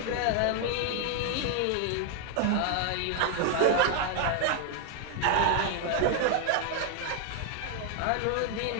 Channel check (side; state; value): both; different; correlation 0.00